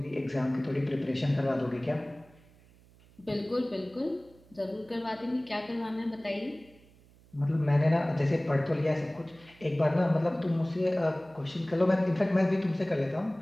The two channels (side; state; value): right; noise; hum, 27 dB below the sound